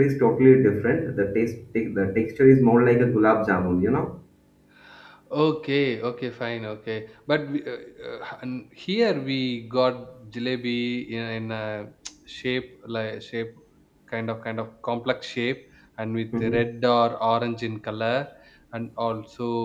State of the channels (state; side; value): identical; both; correlation 1.00